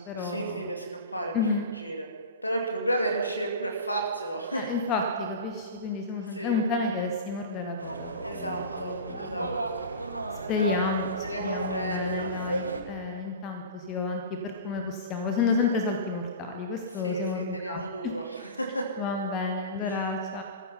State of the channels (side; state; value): both; inverted; correlation -0.31